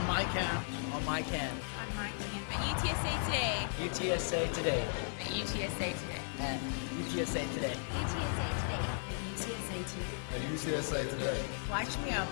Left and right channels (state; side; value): silent; right; 54 dB below the other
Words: my cam. On my cam. On my team. At UTSA today. UTSA today. At UTSA today. At UTSA today. UTSA today. At UTSA today. Watch me on